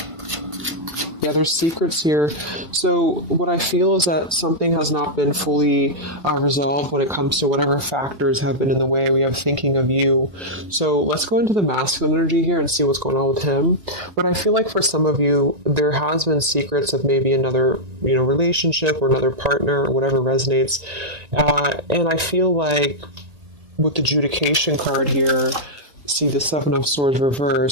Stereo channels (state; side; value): late; left; 1.9 ms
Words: Yeah, there's secrets here. So what I feel is that something has not been fully resolved when it comes to whatever factors have been in the way. We have thinking of you. So let's go into the masculine energy here and see what's going on with him. But I feel like for some of you, there has been secrets of maybe another, relationship or another partner or whatever resonates. And I feel like with the adjudication card here, see the Seven of Swords